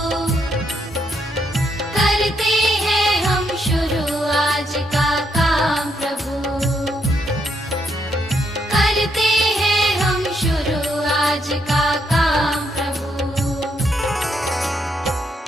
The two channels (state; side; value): normal; both; correlation 0.76